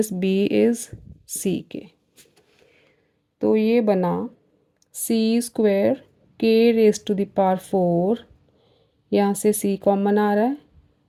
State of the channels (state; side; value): identical; both; correlation 1.00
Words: B is सी के। तो ये बना C square K raise to the power 4, यहाँ से सी common आ रहा है